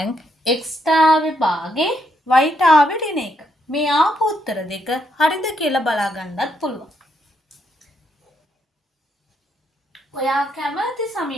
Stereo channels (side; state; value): both; normal; correlation 0.76